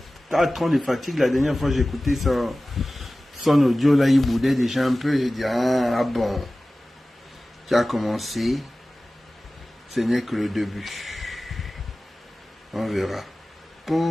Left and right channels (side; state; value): both; normal; correlation 0.97